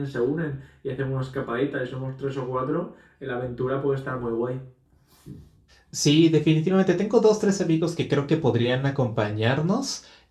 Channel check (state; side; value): identical; both; correlation 1.00